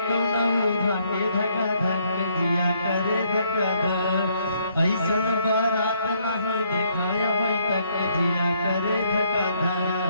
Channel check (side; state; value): both; inverted; correlation -0.70